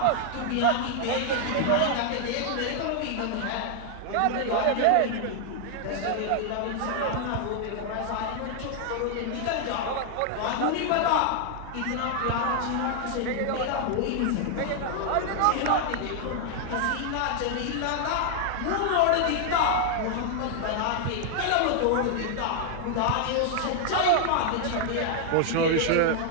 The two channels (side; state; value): both; different; correlation 0.00